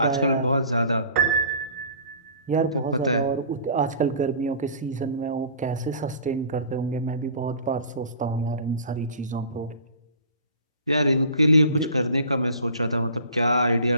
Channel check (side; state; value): both; inverted; correlation -0.44